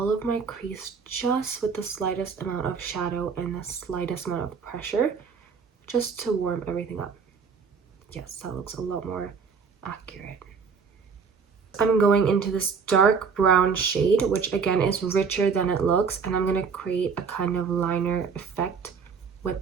of my crease just with the slightest amount of shadow and the slightest amount of pressure, just to warm everything up. Yes, that looks a lot more accurate. I'm going into this dark brown shade, which again is richer than it looks, and I'm going to create a kind of liner effect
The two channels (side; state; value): left; quieter; 5.8 dB